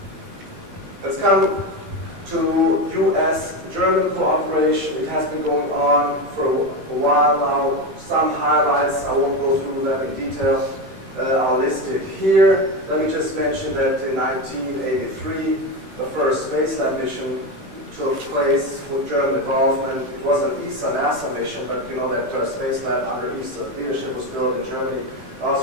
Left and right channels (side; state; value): left; late; 15 ms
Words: Let's come to US-German cooperation. It has been going on for a while now. Some highlights, I won't go through them in detail, are listed here. Let me just mention that in 1983, the first space lab mission took place with German involvement. It was an ESA-NASA mission, but you know that space lab under ESA leadership was built in Germany.